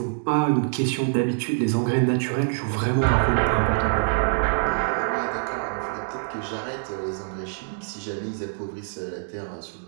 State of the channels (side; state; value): left; silent; digital silence